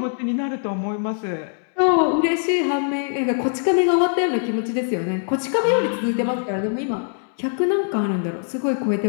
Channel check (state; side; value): silent; right; 64 dB below the other